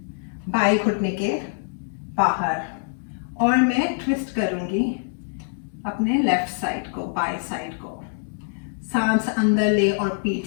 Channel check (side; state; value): right; silent; digital silence